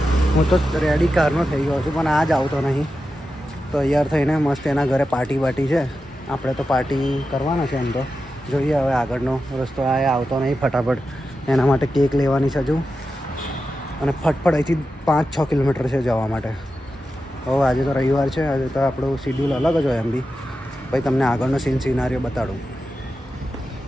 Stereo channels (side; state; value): both; normal; correlation 0.90